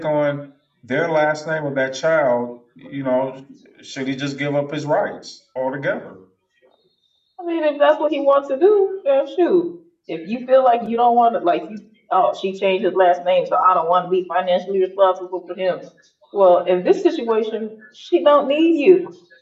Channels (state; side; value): identical; both; correlation 1.00